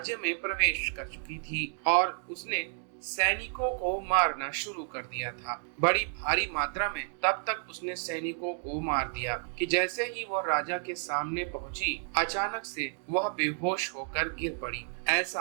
में प्रवेश कर चुकी थी और उसने सैनिकों को मारना शुरू कर दिया था, बड़ी भारी मात्रा में। तब तक उसने सैनिकों को मार दिया कि जैसे ही वह राजा के सामने पहुंची, अचानक से वह बेहोश होकर गिर पड़ी।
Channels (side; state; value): left; silent; 57 dB below the other